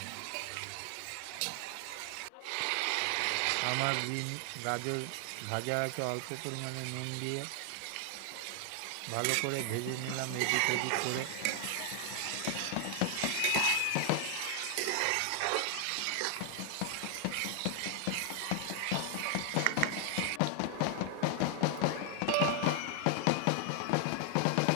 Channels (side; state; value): both; different; correlation 0.00